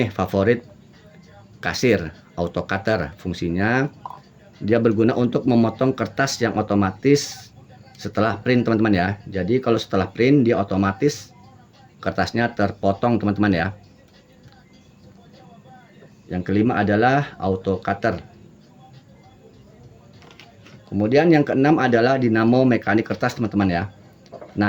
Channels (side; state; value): both; identical; correlation 1.00